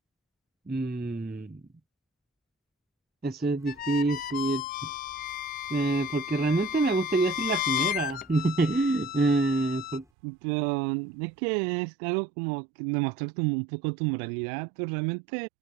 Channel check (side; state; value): left; drops out; at 10.1 s